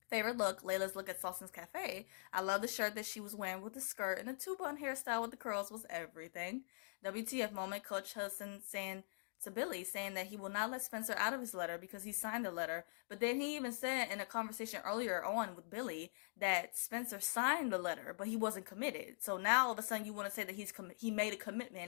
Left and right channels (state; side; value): silent; right; digital silence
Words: Favorite look, Layla'S look at Salson's Cafe. I love the shirt that she was wearing with the skirt, and the two-bun hairstyle with the curls was everything. WTF moment, Coach Hudson saying to Billy, saying that he will not let Spencer out of his letter because he signed the letter. But then he even said in a conversation earlier on with Billy that Spencer signed the letter, but he wasn't committed. So now all of a sudden you want to say that he made a